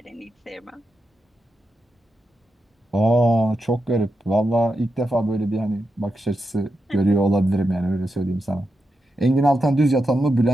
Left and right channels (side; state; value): both; normal; correlation 0.88